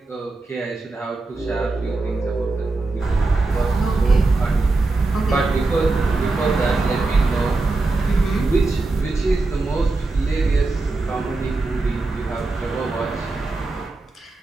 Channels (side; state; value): left; quieter; 3.4 dB